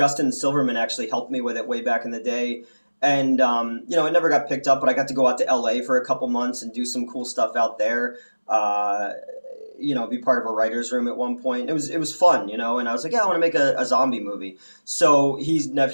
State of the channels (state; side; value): inverted; both; correlation -1.00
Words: Silverman actually helped me with it way back in the day. And, it never got picked up, but I got to go out to LA for a couple months and do some cool stuff out there. Be part of a writer's room at one point. It was fun, and I was like, yeah, I want to make a zombie movie. So he'd